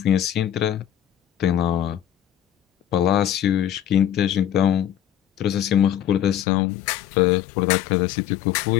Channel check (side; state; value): right; drops out; at 6.5 s